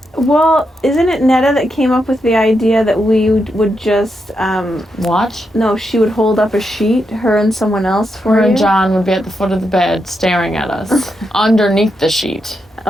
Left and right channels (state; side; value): normal; both; correlation 0.84